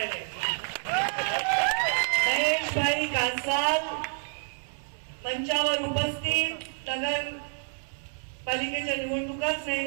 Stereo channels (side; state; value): left; silent; 59 dB below the other